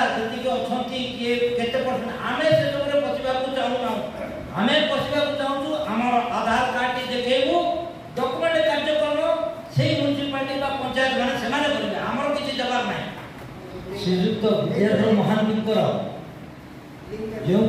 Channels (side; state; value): both; identical; correlation 1.00